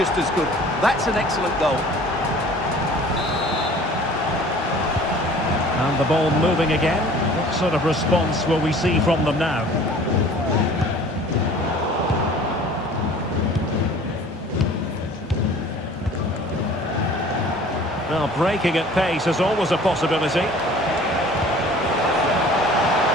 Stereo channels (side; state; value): both; normal; correlation 0.48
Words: as good. That's an excellent goal. And the ball moving again. What sort of response will we see from them now? Well, breaking at pace is always a possibility. Nice